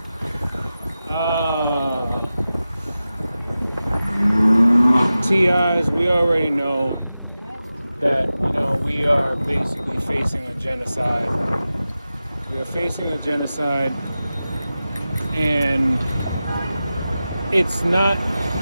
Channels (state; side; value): inverted; both; correlation -0.94